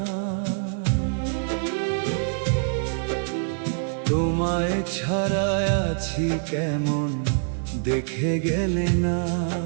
তোমায় ছাড়া আছি কেমন দেখে গেলে না।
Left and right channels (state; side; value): silent; left; digital silence